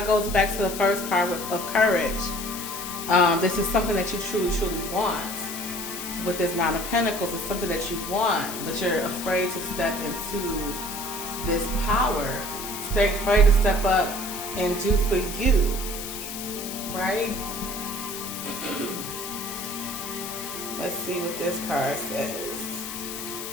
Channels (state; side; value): noise; left; hiss, 7 dB below the sound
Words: goes back to the first card of Courage. This is something that you truly, truly want. With this Nine of Pentacles, it's something that you want, but you're afraid to step into this power. Stay afraid to step up and do for you, right? Let's see what this card says.